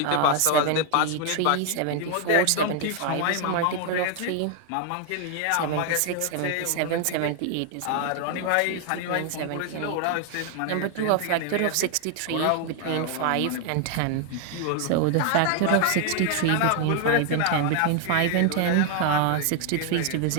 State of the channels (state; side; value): different; both; correlation 0.00